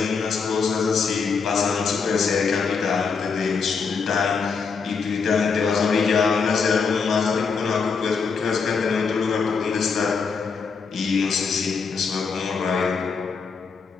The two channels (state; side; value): quieter; right; 5.4 dB